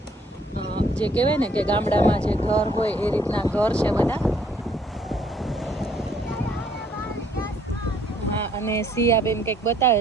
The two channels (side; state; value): both; normal; correlation 0.64